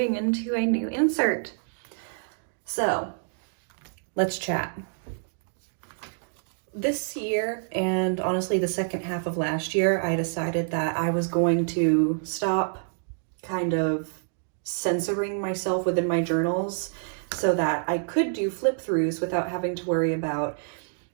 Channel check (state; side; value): silent; left; digital silence